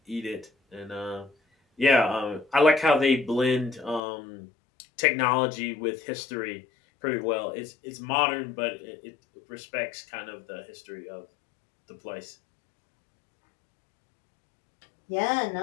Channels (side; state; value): right; drops out; at 4.0 s